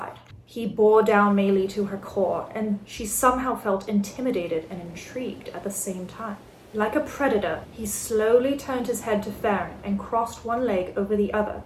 He bore down Maylie to her core, and she somehow felt intimidated and intrigued at the same time. Like a predator, he slowly turned his head to Farron and crossed one leg over the other,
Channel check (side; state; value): both; identical; correlation 1.00